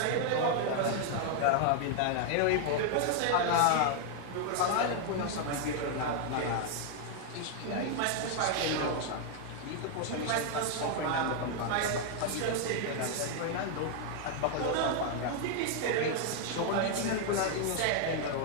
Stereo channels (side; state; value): both; different; correlation 0.00